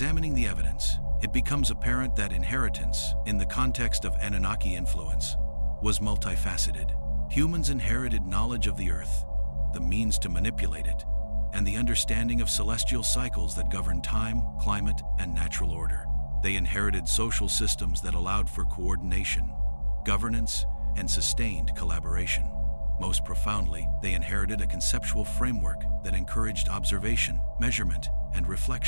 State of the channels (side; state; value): both; inverted; correlation -1.00